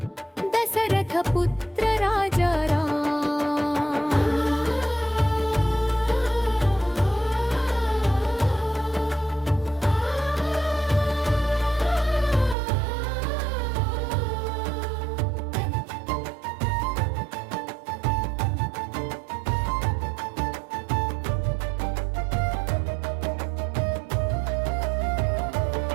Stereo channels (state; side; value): drops out; left; at 12.6 s